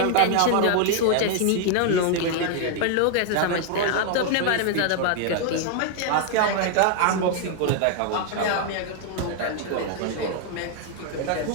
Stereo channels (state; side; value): different; both; correlation 0.00